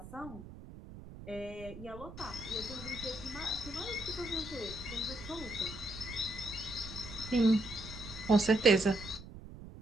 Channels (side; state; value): right; noise; rumble, 14 dB below the sound